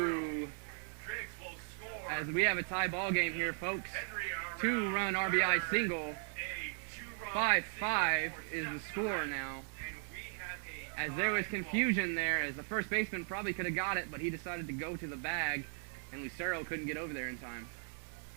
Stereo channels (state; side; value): silent; left; 53 dB below the other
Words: As we have a tie ball game here, folks. 2-run RBI single. 5-5 is the score now. As there was confusion there, as the first baseman probably could have got it, but he decided to go to the bag, and Lucero couldn't get over there in time.